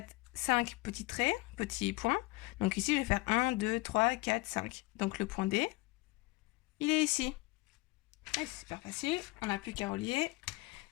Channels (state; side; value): quieter; right; 22.7 dB